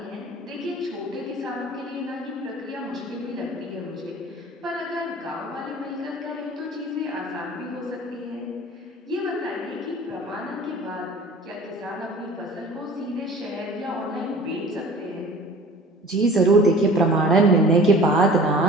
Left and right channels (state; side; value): normal; both; correlation 0.44